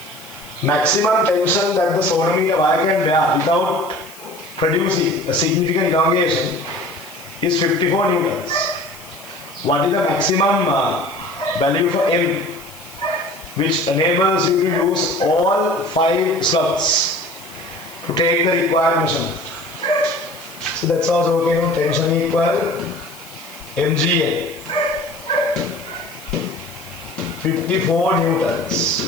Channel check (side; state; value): left; noise; hiss, 20 dB below the sound